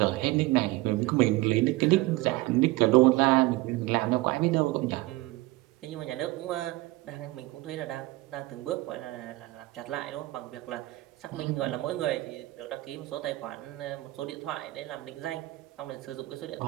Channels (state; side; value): quieter; left; 19.5 dB